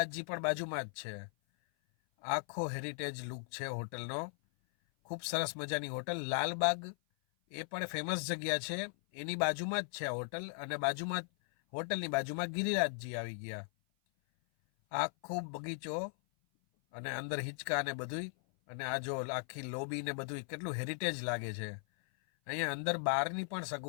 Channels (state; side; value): silent; right; 52 dB below the other